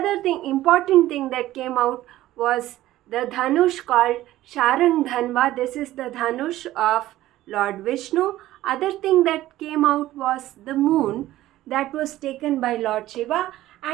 thing, important thing that came out was the dhanush called Sharang Dhanva. This is the dhanush of Lord Vishnu. Other thing that came out was the moon, that was taken by Lord Shiva.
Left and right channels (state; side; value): quieter; left; 15.2 dB